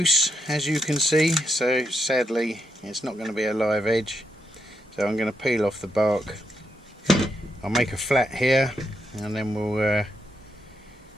as you can see, so sadly it's not going to be a live edge, so I'm going to peel off the bark. I'll make a flat here and then we'll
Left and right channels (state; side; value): normal; both; correlation 0.80